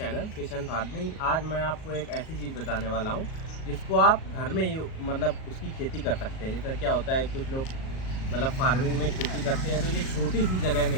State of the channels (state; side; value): late; right; 38 ms